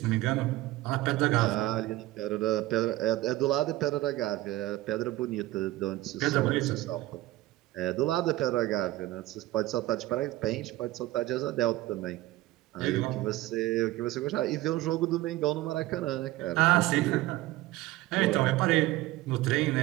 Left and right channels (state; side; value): quieter; left; 17.4 dB